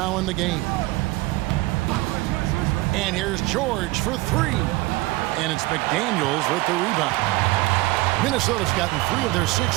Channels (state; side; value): quieter; left; 20.7 dB